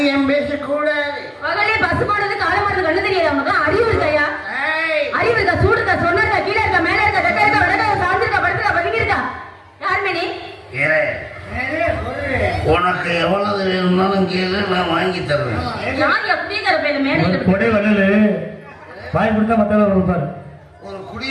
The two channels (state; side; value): identical; both; correlation 1.00